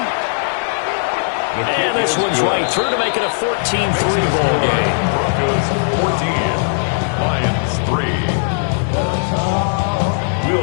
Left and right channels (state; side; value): silent; right; digital silence